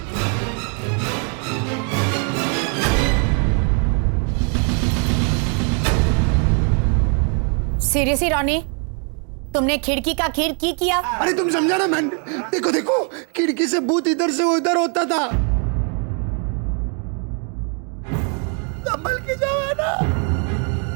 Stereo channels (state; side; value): quieter; left; 39.5 dB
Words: सीरियसली रॉनी, तुमने खिड़की का खीर की किया? अरे तुम समझा ना मैन, देखो देखो खिड़की से भूत इधर से उधर होता था। संभल के जाओ है ना।